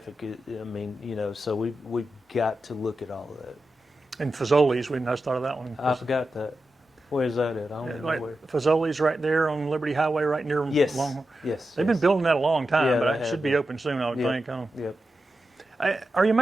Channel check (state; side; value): normal; both; correlation 0.90